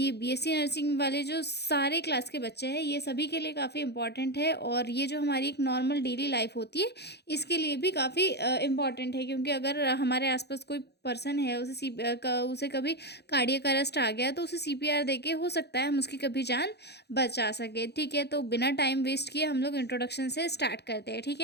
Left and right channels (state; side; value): late; right; 0.48 ms